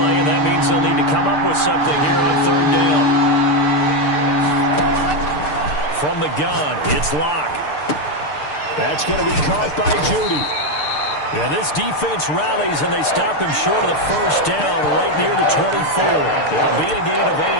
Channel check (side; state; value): right; late; 6.7 ms